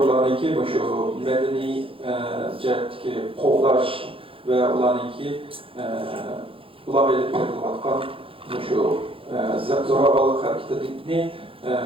şu medeni cihetteki kovlaş ve olanınki ulağa edip verilatkan şu zoravallık hareketini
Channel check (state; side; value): late; left; 0.26 ms